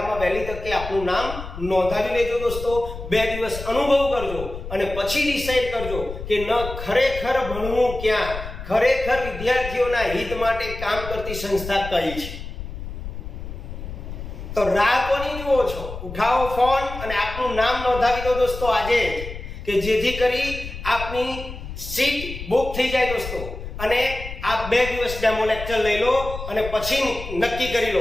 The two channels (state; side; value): noise; left; rumble, 9 dB below the sound